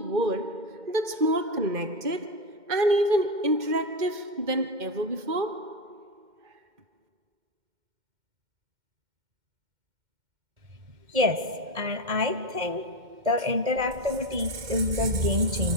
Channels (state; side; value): late; left; 2.1 ms